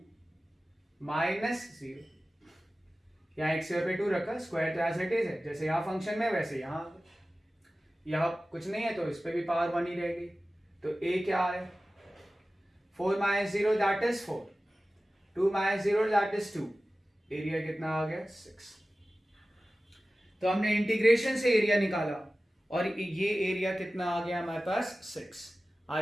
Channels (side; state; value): both; normal; correlation 0.96